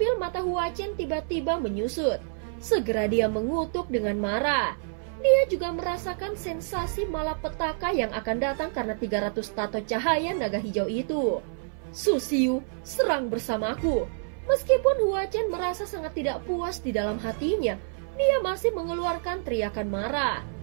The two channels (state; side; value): silent; left; 59 dB below the other